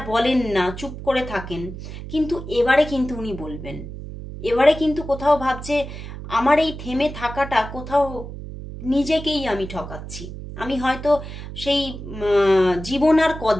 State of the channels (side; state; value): right; noise; hum, 10 dB below the sound